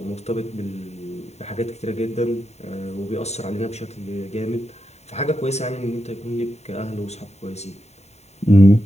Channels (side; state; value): right; late; 0.32 ms